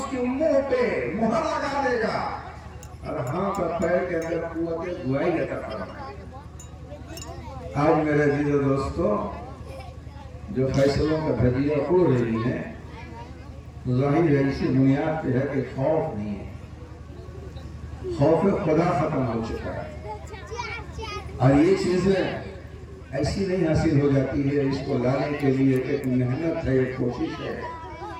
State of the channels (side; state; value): both; identical; correlation 1.00